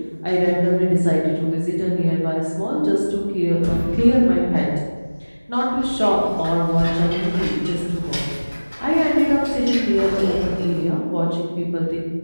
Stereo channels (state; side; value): inverted; both; correlation -1.00